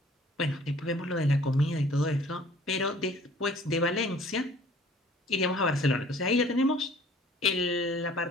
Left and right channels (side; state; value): both; normal; correlation 0.53